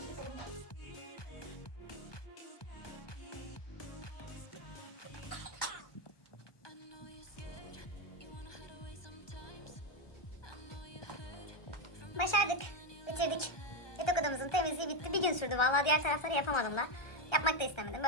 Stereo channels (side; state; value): right; late; 1.3 ms